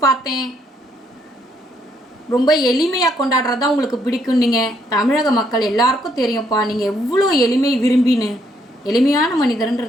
பார்த்தேன். ரொம்ப எளிமையாக கொண்டாடுறது தான் உங்களுக்கு பிடிக்கும். நீங்கள் தமிழக மக்கள் எல்லாருக்கும் தெரியும்ப்பா, நீங்கள் எவ்வளோ எளிமை விரும்பின்னு. எளிமையான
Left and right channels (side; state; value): both; normal; correlation 0.72